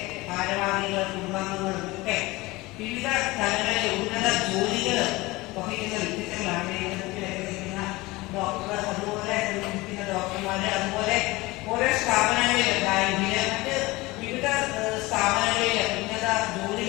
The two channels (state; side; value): quieter; right; 21.3 dB